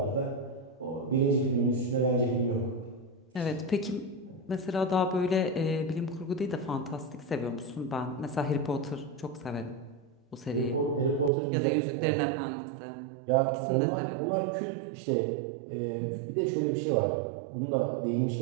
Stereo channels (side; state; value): left; drops out; at 11.3 s